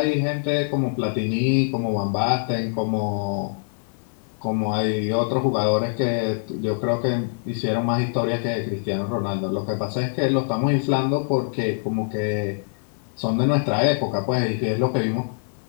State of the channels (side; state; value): right; silent; 63 dB below the other